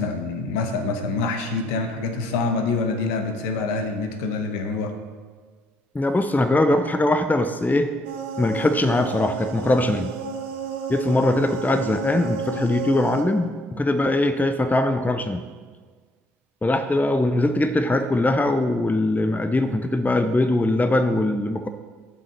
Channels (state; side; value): normal; both; correlation 0.75